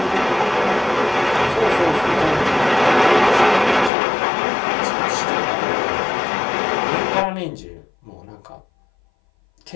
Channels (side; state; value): right; drops out; at 3.9 s